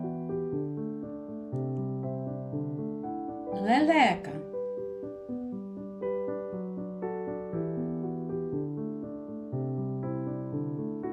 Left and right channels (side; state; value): both; identical; correlation 1.00